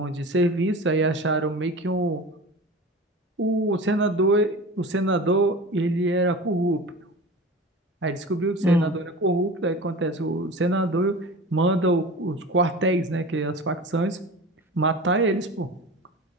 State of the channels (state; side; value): normal; both; correlation 0.34